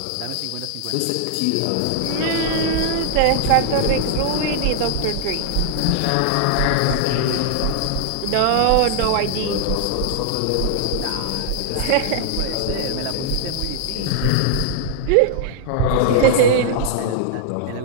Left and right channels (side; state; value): both; different; correlation -0.01